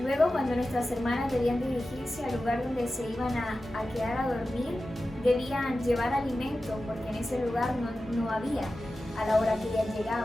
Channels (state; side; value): normal; both; correlation 0.94